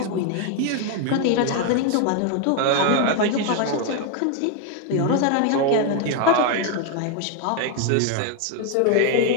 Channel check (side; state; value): both; different; correlation 0.01